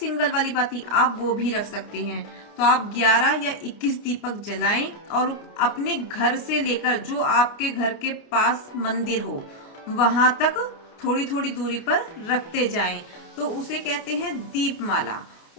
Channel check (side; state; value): right; late; 29 ms